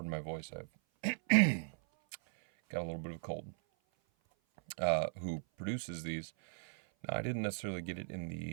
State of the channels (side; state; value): left; silent; 53 dB below the other